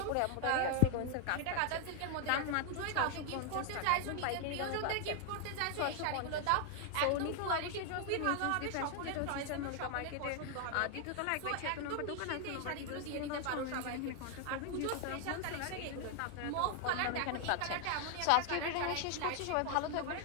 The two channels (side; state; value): both; different; correlation 0.00